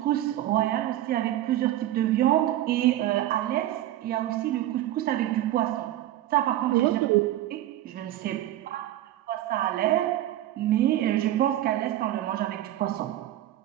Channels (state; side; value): quieter; left; 13.6 dB